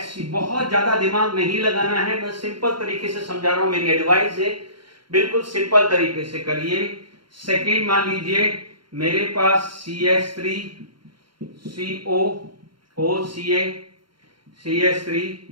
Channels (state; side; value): late; left; 0.73 ms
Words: बहुत ज्यादा दिमाग नहीं लगाना है, मैं सिंपल तरीके से समझा रहा हूं, मेरी एडवाइस है, बिल्कुल सिंपल तरीके से करिए। सेकेंड मान लीजिए मेरे पास CH3 COOCA CH3